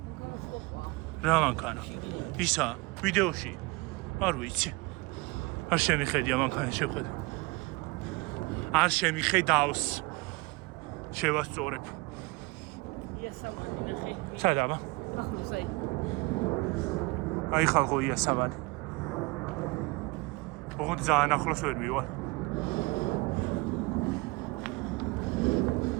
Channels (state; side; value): quieter; left; 25.3 dB